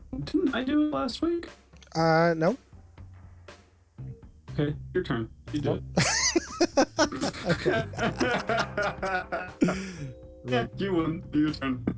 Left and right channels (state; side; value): identical; both; correlation 1.00